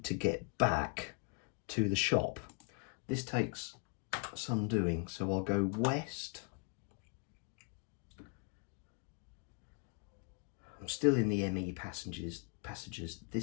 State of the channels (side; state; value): right; quieter; 34.7 dB